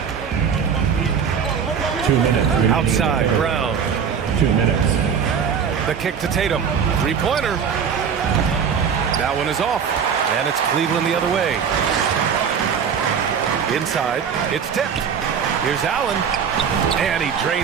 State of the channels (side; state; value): left; quieter; 7.1 dB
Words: 2 minutes. Outside, Brown. 2 minutes. The kick to Tatum. Three-pointer. That one is off. And it's Cleveland the other way. Inside, it's tipped. Here's Allen, and he